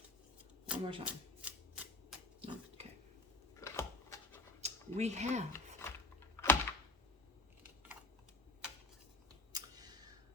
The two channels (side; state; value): right; quieter; 3.3 dB